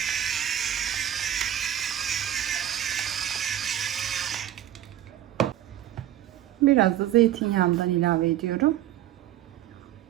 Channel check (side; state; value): left; quieter; 11.8 dB